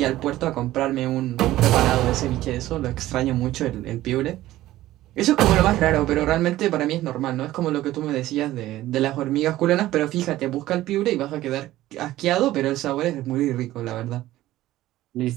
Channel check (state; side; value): quieter; left; 15.4 dB